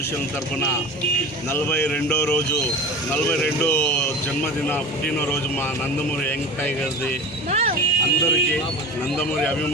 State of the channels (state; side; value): normal; both; correlation 0.34